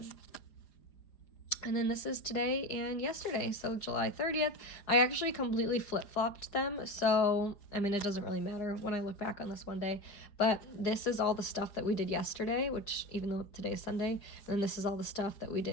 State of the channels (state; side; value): late; right; 4.9 ms